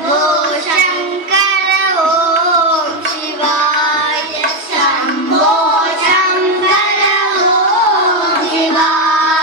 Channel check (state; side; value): late; left; 3.1 ms